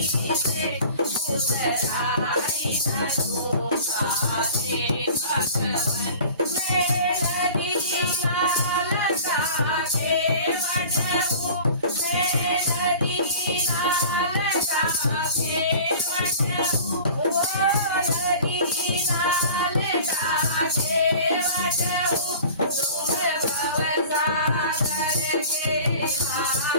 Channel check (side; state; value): both; inverted; correlation -0.42